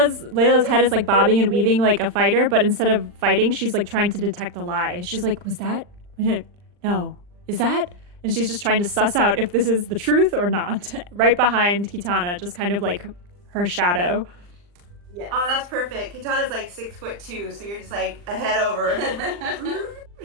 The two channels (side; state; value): left; late; 40 ms